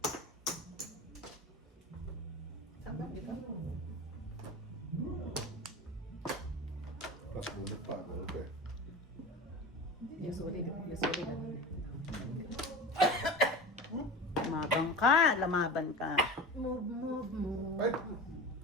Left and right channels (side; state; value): both; normal; correlation 0.32